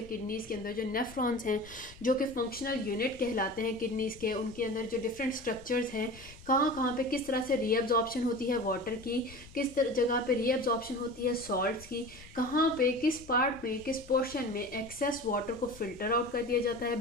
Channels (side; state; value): left; noise; rumble, 20 dB below the sound